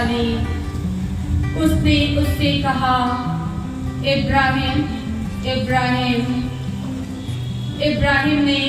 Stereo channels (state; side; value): identical; both; correlation 1.00